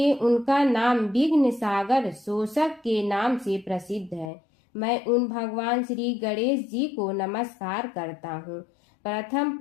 उनका नाम विघ्न सागर शोषक के नाम से प्रसिद्ध है। मैं उन भगवान श्री गणेश जी को नमस्कार करता हूँ। प्रथम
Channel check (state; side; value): drops out; right; at 4.3 s